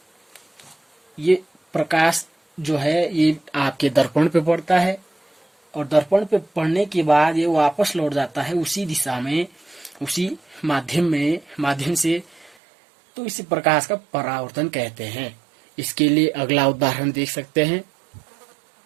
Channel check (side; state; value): left; drops out; at 12.6 s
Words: ये प्रकाश जो है ये आपके दर्पण पे पड़ता है और दर्पण पे पड़ने के बाद ये वापस लौट जाता है उसी दिशा में, उसी माध्यम से। तो इसे प्रकाश का परावर्तन कहते हैं। इसके लिए अगला उदाहरण देख सकते हैं।